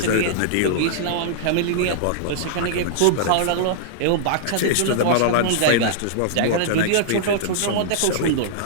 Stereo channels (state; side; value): different; both; correlation -0.02